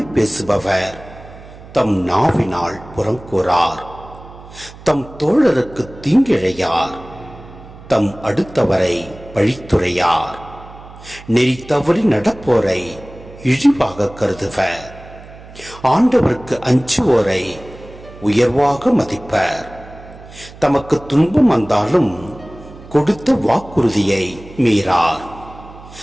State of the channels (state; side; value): noise; right; hum, 18 dB below the sound